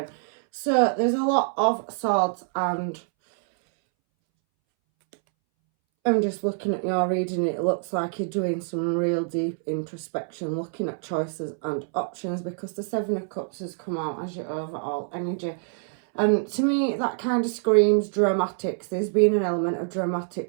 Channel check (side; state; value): left; silent; 61 dB below the other